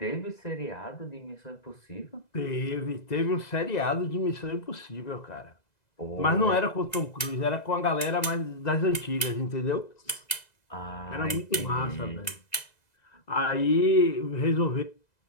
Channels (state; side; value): late; right; 2.0 ms